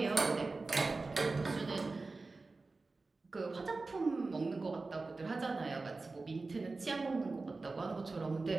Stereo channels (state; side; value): quieter; left; 3.6 dB